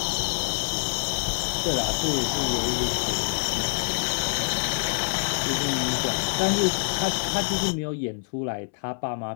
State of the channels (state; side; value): silent; right; 61 dB below the other